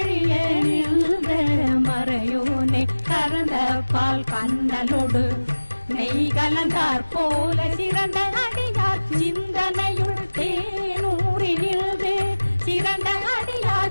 நின்ற மறையோனே கறந்த பால் கண்ணலோடு நெய் கலந்தார் போல சிறந்த அடியார் சிந்தனையுள் தேனூரினில்து சிறந்த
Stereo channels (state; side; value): inverted; both; correlation -1.00